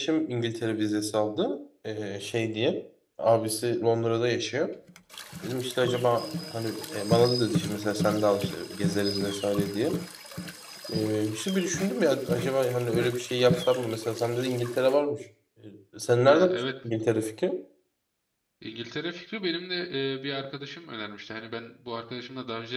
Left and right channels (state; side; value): identical; both; correlation 1.00